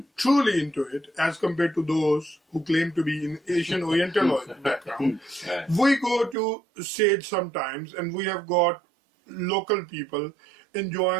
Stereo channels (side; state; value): left; drops out; at 6.4 s